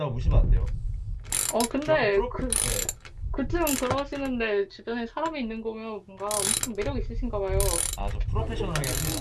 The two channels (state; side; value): identical; both; correlation 1.00